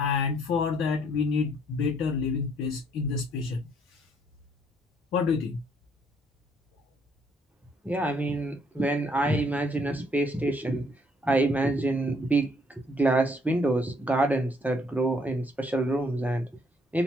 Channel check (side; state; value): both; normal; correlation 0.66